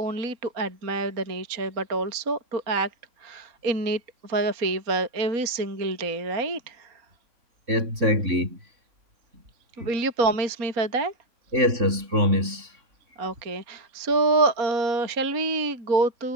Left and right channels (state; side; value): late; left; 3.6 ms